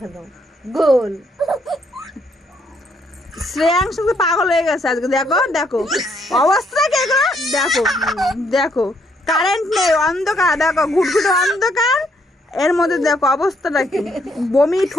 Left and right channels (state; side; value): normal; both; correlation 0.71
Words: খাও গোল। শ্রেয়াংশ তো পাগল হয়ে গেছে আজকে, দেখো দেখো অবস্থা কে গো, দেখো দেখো কারেন্ট নেই, অন্ধকার, দেখো ঘুটঘুটে অন্ধকার, এর মধ্যে দেখো অবস্থাটা কি, বমি